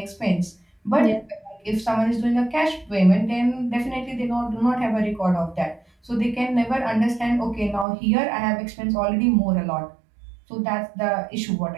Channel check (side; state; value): left; drops out; at 7.9 s